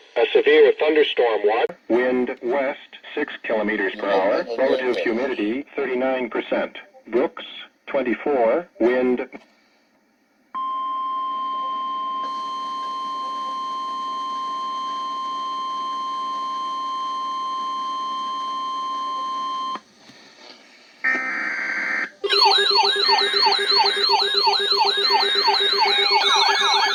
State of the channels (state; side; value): identical; both; correlation 1.00